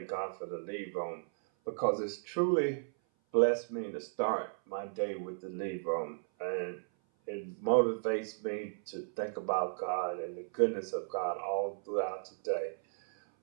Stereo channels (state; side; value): silent; left; 55 dB below the other